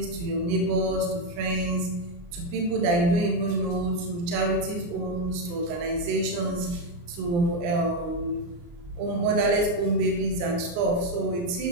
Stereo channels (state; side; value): late; left; 29 ms